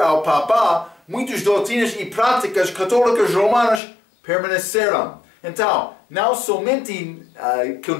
Papa, muitas doutrinas e práticas católicas romanas permaneceram. Então, não somente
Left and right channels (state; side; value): drops out; right; at 3.8 s